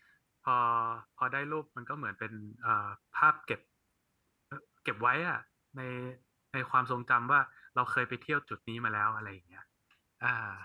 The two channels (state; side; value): identical; both; correlation 1.00